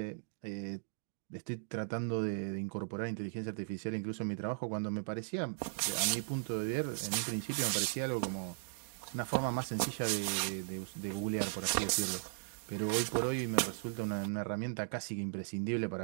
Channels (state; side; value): silent; left; digital silence